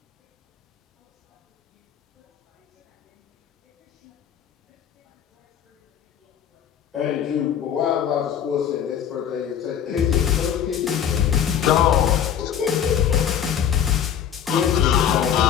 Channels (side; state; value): right; quieter; 9.0 dB